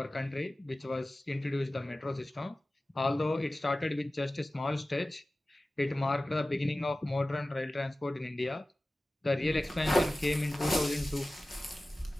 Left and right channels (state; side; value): normal; both; correlation 0.96